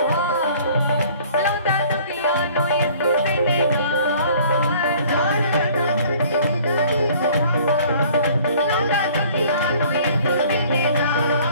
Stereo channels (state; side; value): inverted; both; correlation -0.53